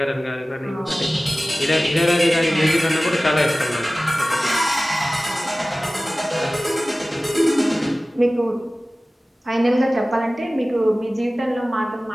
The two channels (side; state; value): both; normal; correlation 0.97